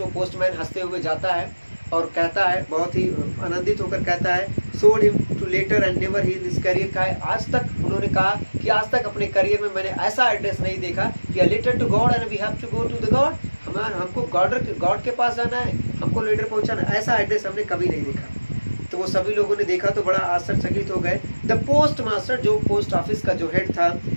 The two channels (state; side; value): inverted; both; correlation -1.00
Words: वो पोस्टमैन हंसते हुए जाता है और कहता है, बहुत ही आनंदित होकर कहता है, showed him to letter and never he in his career. का है आज तक, उन्होंने कहा कि आज तक अपने करियर में मैंने ऐसा एड्रेस नहीं देखा कि letter to God and we have to go to the God, हमको गॉड के पास जाना है, हमको लेटर पहुंचाना, ऐसा एड्रेस हमने कभी नहीं देखा. तो वो सभी लोगों ने देखा तो बड़ा आश्चर्यचकित हो गए। द पोस्ट मास्टर, जो पोस्ट ऑफिस का जो हेड था,